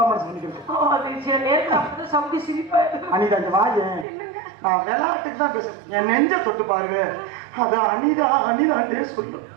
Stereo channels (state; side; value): drops out; left; at 4.0 s